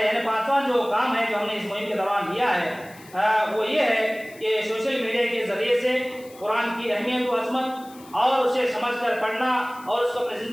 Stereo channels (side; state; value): left; noise; hiss, 23 dB below the sound